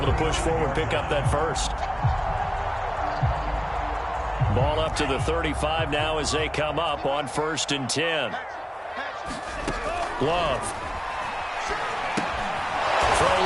to push forward, pick up that first. Ball up to the 35 now as they come up on 1st and 10. Love. Throw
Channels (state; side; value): identical; both; correlation 1.00